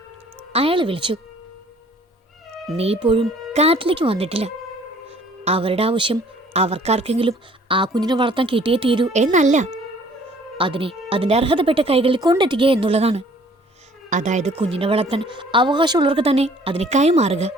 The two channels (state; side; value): normal; both; correlation 0.56